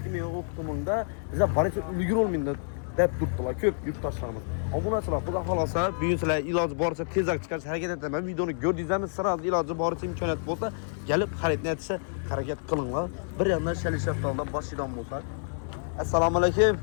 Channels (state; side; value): silent; right; 59 dB below the other